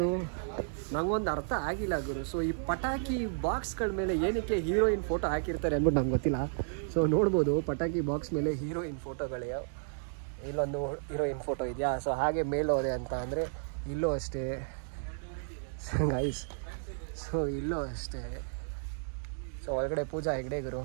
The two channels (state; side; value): silent; left; digital silence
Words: ಅರ್ಥ ಆಗಿಲ್ಲ ಗುರು. ಸೊ ಈ ಪಟಾಕಿ ಬಾಕ್ಸ್ಗಳ ಮೇಲೆ ಏನಕ್ಕೆ ಹೀರೋಯಿನ್ ಫೋಟೋ ಹಾಕಿರ್ತಾರೆ ಅಂದ್ಬಿಟ್ಟು ನಂಗೆ ಗೊತ್ತಿಲ್ಲ. ಸೊ ನೋಡ್ಬೋದು ಪಟಾಕಿ ಬಾಕ್ಸ್ ಮೇಲೆ ಹೀರೋಯಿನ್ ಫೋಟೋಗಳೇ. ಇಲ್ಲೊಂದು ಹೀರೋಯಿನ್ ಫೋಟೋ ಇದೆಯಾ. ಸೊ ಹಾಗೆ ಮೇಲೋದೆ ಅಂತ ಅಂದರೆ ಇಲ್ಲೂ ಅಷ್ಟೇ ಗೈಸ್. ಸೊ ಇಲ್ಲೂ ಅಷ್ಟೇ. ಸೊ ಒಳಗಡೆ ಪೂಜಾ ಹೆಗ್ಡೆ ಗುರು.